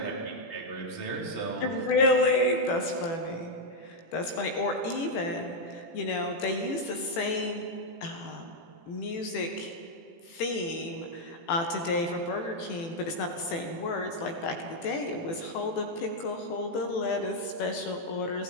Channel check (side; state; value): right; late; 18 ms